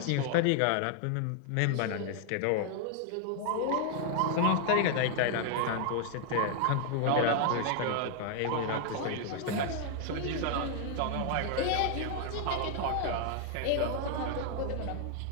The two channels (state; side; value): different; both; correlation 0.00